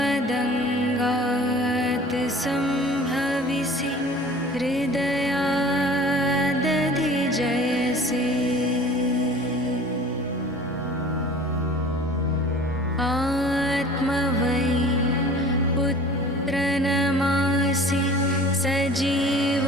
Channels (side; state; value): both; normal; correlation 0.44